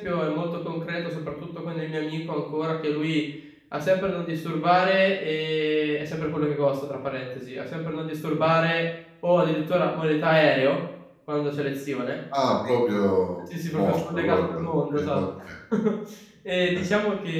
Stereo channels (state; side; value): identical; both; correlation 1.00